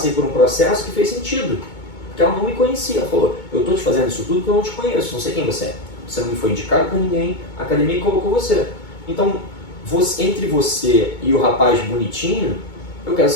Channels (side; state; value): right; late; 2.2 ms